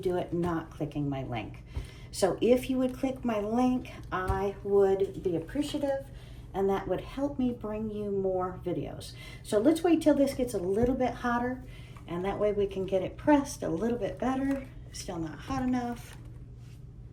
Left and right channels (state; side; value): identical; both; correlation 1.00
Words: it not clicking my link. So if you would click my link, I would be appreciative, and that would help me bring you more videos. So let's wait till this gets a little bit hotter, and that way we can get it pressed a little bit better. Still not hot enough.